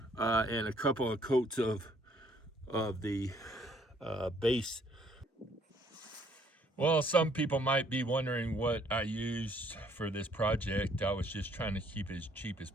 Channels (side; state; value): both; normal; correlation 0.64